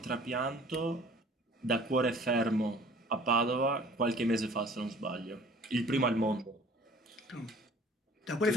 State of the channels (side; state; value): both; normal; correlation 0.50